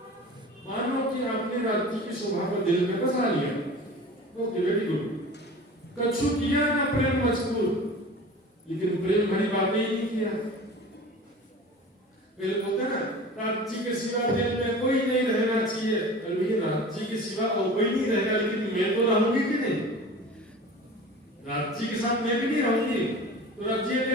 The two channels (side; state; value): both; normal; correlation 0.38